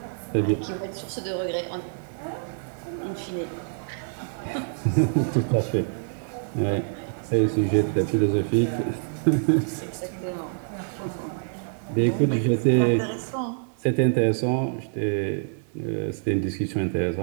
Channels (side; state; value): left; silent; 60 dB below the other